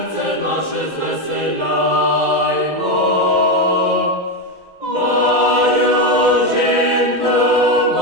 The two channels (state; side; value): late; left; 2.0 ms